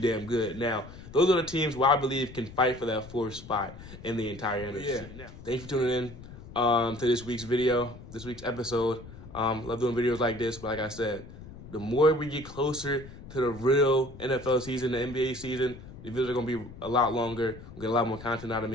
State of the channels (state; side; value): noise; left; rumble, 15 dB below the sound